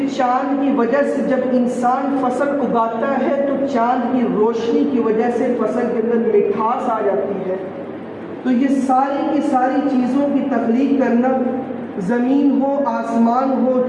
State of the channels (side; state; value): both; identical; correlation 1.00